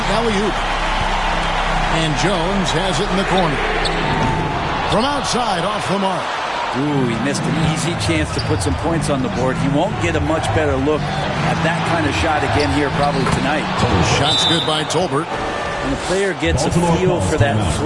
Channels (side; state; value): both; identical; correlation 1.00